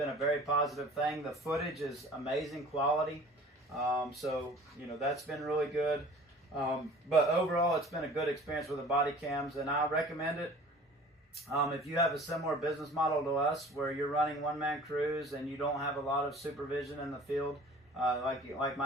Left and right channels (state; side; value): normal; both; correlation 0.46